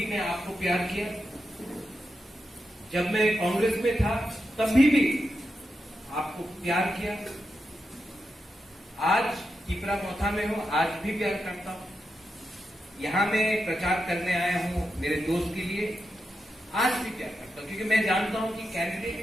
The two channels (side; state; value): both; normal; correlation 0.87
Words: मैं आपको प्यार किया, जब मैं कांग्रेस में था तभी भी आपको प्यार किया, आज टीपरामोथा में हूं आज भी प्यार करता हूं। यहां मैं प्रचार करने आया हूं मेरे दोस्त के लिए, आज भी प्यार करता हूं क्योंकि मैं जानता हूं कि कैंडिडेट